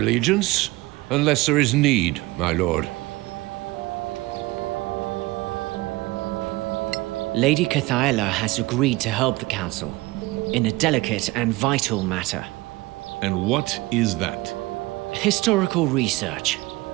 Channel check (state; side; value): quieter; left; 20.8 dB